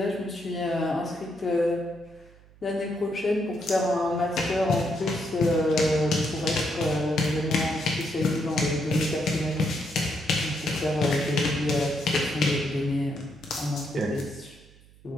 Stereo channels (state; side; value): noise; right; hum, 25 dB below the sound